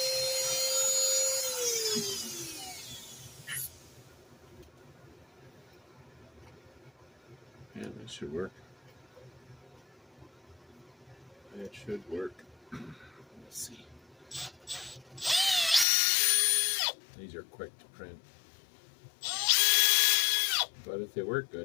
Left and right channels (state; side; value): drops out; right; at 15.9 s